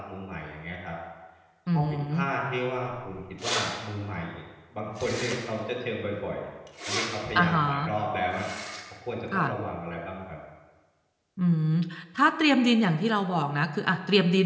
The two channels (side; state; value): both; identical; correlation 1.00